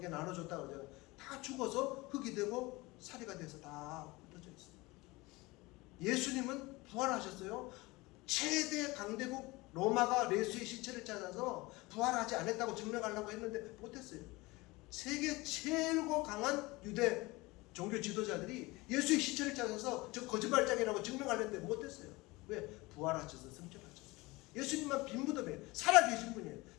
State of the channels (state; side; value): quieter; right; 22.3 dB